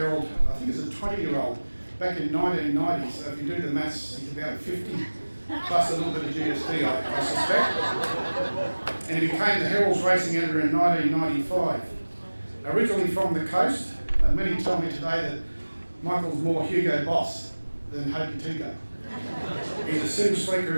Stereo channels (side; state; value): both; inverted; correlation -1.00